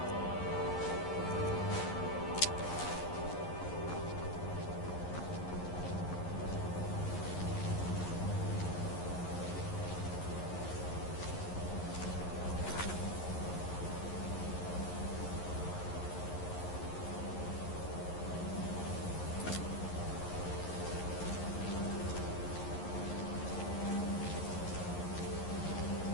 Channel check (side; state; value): right; late; 11 ms